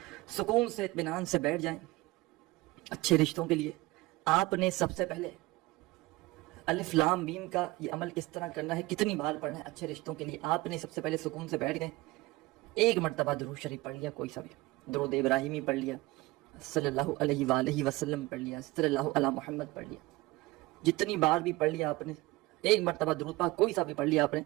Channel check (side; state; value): left; quieter; 20.6 dB